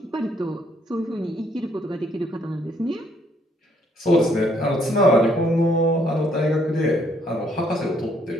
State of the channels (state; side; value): normal; both; correlation 0.68